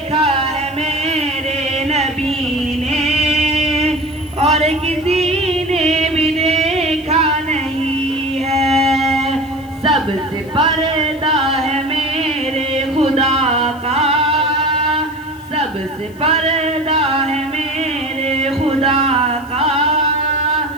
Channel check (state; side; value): noise; left; hiss, 26 dB below the sound